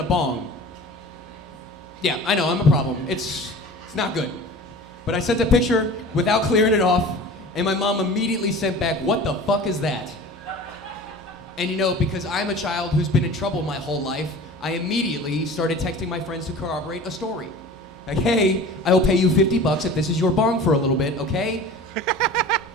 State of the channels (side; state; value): both; normal; correlation 0.40